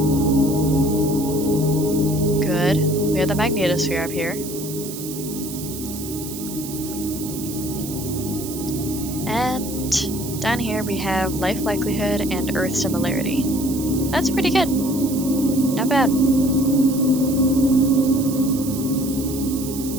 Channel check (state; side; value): noise; right; hiss, 10 dB below the sound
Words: Good. We have the magnetosphere up here. And down here we have life likelihood and Earth similarity. That's pretty good. Not bad.